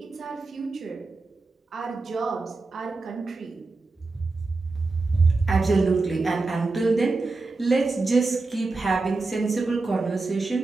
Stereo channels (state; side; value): quieter; left; 3.6 dB